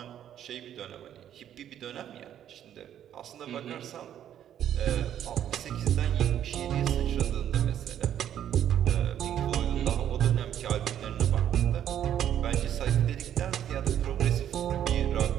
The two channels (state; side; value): quieter; left; 10.4 dB